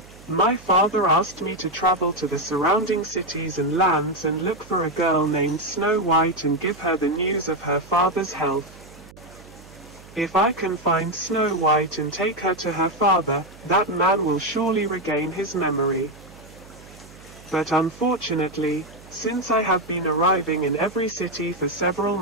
my father asked me to travel to the surrounding cities and lands and look for a girl named Snow White and give her the news of her father's health. If I can find Snow White and take her to her father, that man will surely regain his memory. But unfortunately, since I have been arriving in every city for several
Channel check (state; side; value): noise; right; hum, 21 dB below the sound